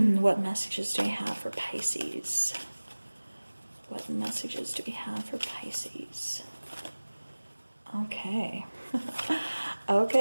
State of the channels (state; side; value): inverted; both; correlation -1.00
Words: What messages do we have for Pisces? What messages do we have for Pisces? Okay.